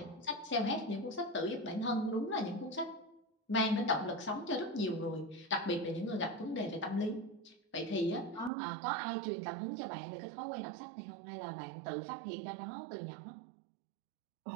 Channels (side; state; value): left; drops out; at 8.5 s